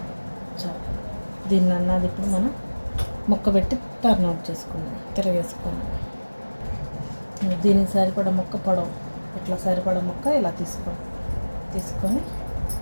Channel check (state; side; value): inverted; both; correlation -1.00